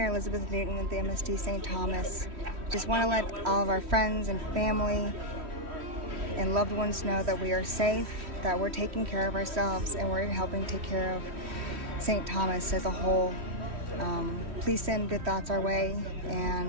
Elizabeth Newton with the MSD St. Thomas. Just want to let all of our friends and family and loved ones know that we are safe, that we're taking care of ourselves, and we're helping take care of St. Thomas as a whole. Please send good thoughts our way,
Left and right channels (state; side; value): late; left; 3.1 ms